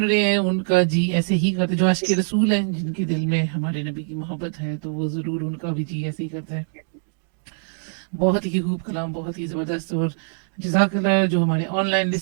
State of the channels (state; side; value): silent; left; digital silence